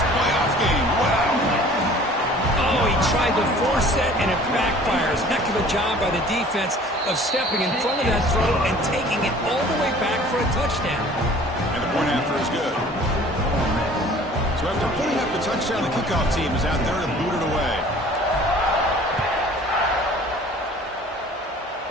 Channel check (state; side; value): normal; both; correlation 0.49